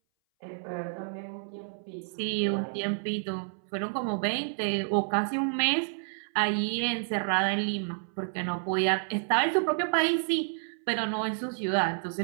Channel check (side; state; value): left; silent; 58 dB below the other